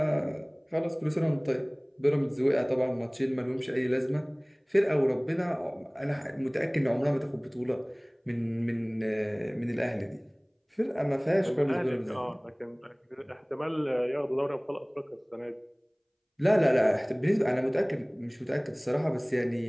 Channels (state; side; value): identical; both; correlation 1.00